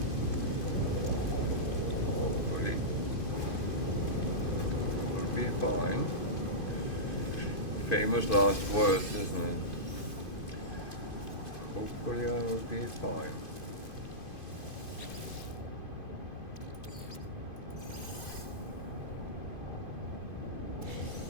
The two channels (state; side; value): late; right; 2.5 ms